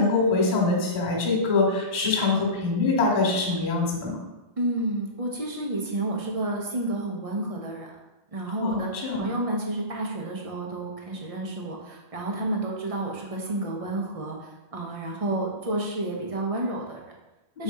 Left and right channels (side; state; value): left; late; 1.6 ms